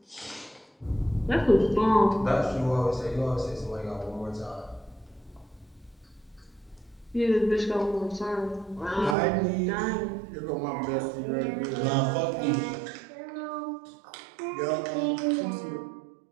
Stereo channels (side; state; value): left; drops out; at 9.2 s